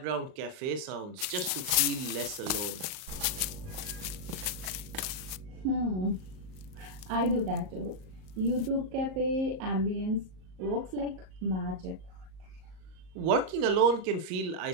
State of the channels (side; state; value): left; late; 37 ms